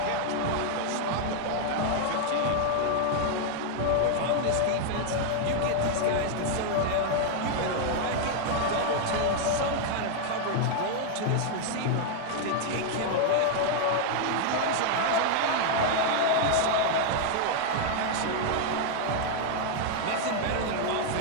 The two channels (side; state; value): both; different; correlation 0.00